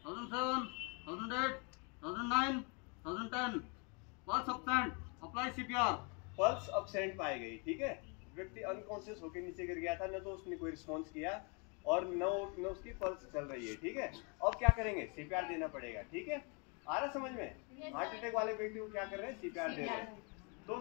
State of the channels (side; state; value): right; quieter; 34.4 dB